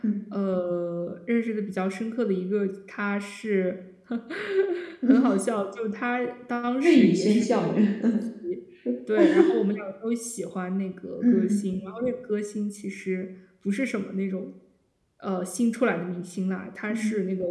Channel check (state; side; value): identical; both; correlation 1.00